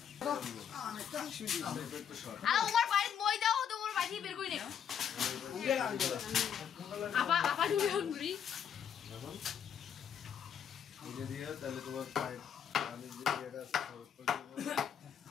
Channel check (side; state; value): right; quieter; 8.2 dB